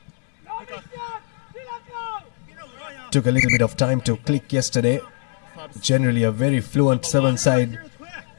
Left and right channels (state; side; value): silent; right; 62 dB below the other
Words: Took a little bit of time to click yesterday. Generally a very fluent seven side.